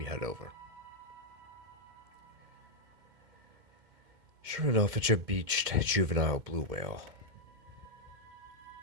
head over. Sure enough, it's a beached juvenile blue whale.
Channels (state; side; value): late; left; 2.2 ms